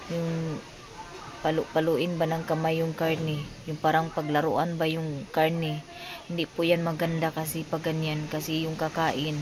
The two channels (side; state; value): both; identical; correlation 1.00